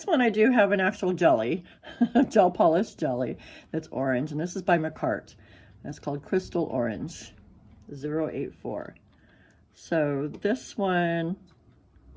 one I do have an actual jelly, gel polish jelly that's orange, and this is by McCart. It's called Crystal Orange 084. So this one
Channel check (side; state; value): both; identical; correlation 1.00